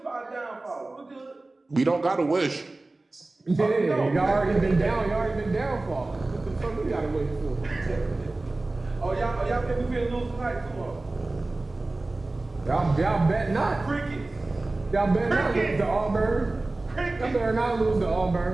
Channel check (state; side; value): quieter; left; 3.1 dB